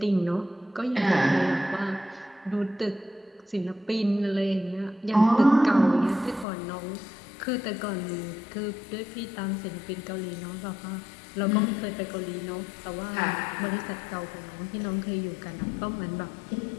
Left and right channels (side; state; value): right; drops out; at 6.5 s